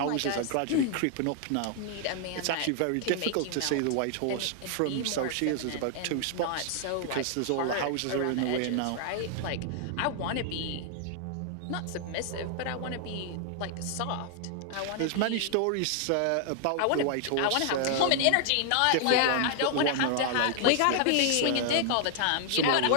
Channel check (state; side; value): different; both; correlation 0.00